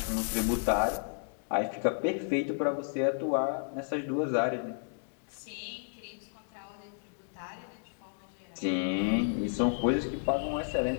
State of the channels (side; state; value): right; silent; digital silence